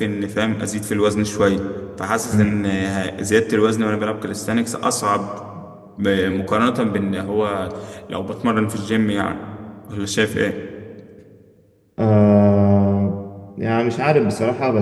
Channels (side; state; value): both; identical; correlation 1.00